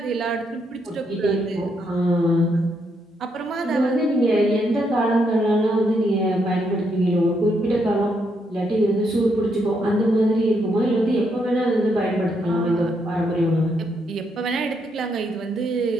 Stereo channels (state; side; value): normal; both; correlation 0.77